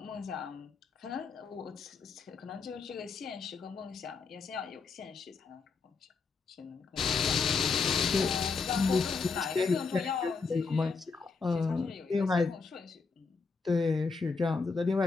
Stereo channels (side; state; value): right; quieter; 4.7 dB